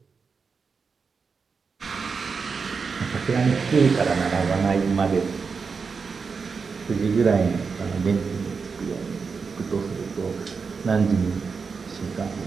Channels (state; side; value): quieter; left; 5.2 dB